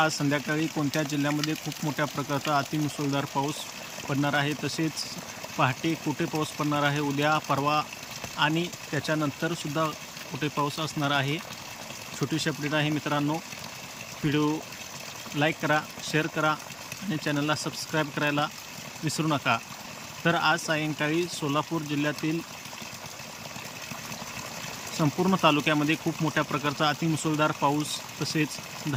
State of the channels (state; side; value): identical; both; correlation 1.00